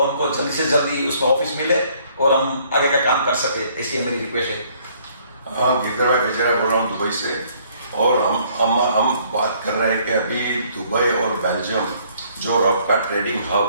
हमको जल्दी से जल्दी उसमें ऑफिस मिले और हम आगे का काम कर सके, ऐसी मेरी रिक्वेस्ट है। हाँ, गिरधर भाई बेचारा बोल रहा हूँ दुबई से, और हम बात कर रहे हैं कि अभी दुबई और बेल्जियम जो रफ का ट्रेडिंग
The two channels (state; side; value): inverted; both; correlation -0.63